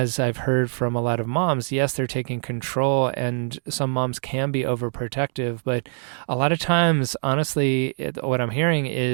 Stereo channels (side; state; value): left; silent; digital silence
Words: I've heard from a lot of moms, yes, they're taking control, and some moms can be overprotective, but a lot of times, honestly, what I'm hearing